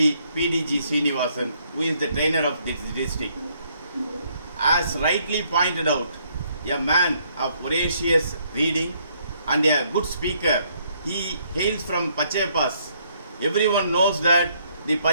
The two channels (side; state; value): both; inverted; correlation -0.69